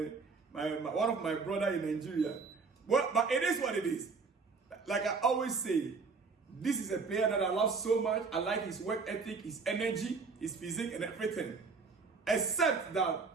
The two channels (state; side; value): quieter; left; 4.7 dB